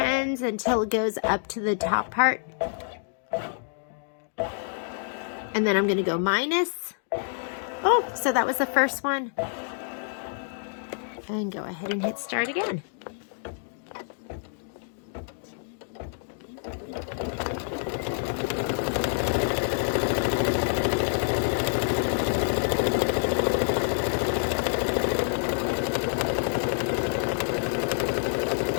until it goes up to the top part. And then I'm going to go minus. Oh, so that was the first one. And go ahead and hit start again.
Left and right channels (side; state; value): right; silent; digital silence